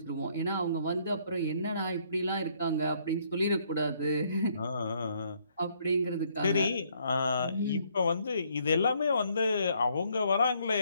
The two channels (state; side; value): inverted; both; correlation -0.68